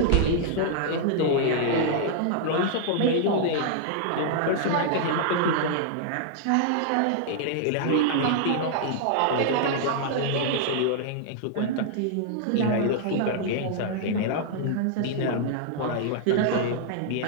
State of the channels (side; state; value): both; different; correlation -0.01